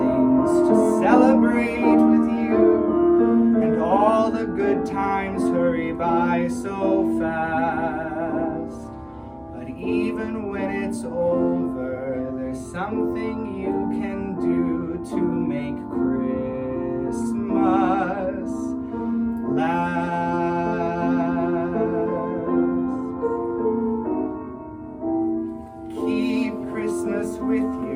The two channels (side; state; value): both; identical; correlation 1.00